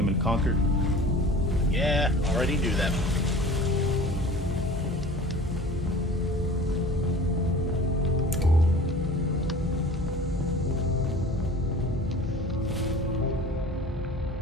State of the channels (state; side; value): normal; both; correlation 0.41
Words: in Concord? Yeah, already knew that.